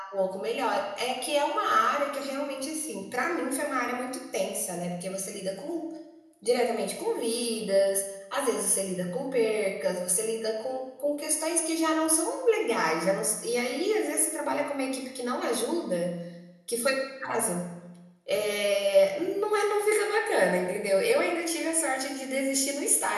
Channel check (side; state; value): both; identical; correlation 1.00